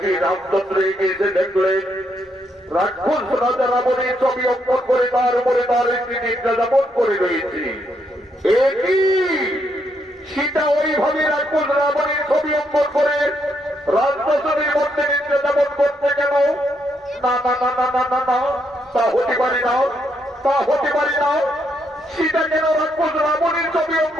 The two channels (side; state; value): both; normal; correlation 0.76